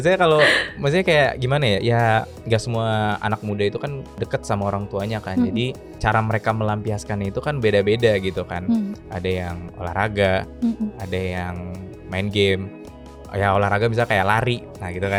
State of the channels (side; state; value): both; identical; correlation 1.00